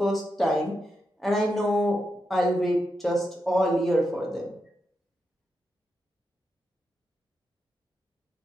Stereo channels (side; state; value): both; normal; correlation 0.86